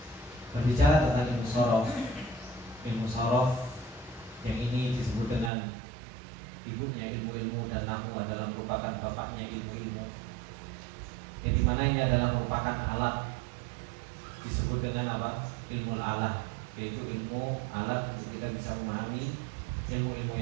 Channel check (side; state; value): left; drops out; at 5.5 s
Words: Berbicara tentang ilmu sorof yang ini disebut dengan ibunya ilmu-ilmu, dan nahwu adalah merupakan bapaknya ilmu-ilmu, yang dimana ini adalah merupakan alat, disebut dengan apa? Ilmu alah, yaitu ilmu alat untuk kita bisa memahami ilmu-ilmu